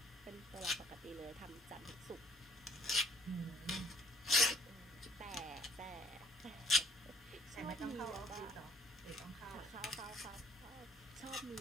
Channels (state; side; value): normal; both; correlation 0.61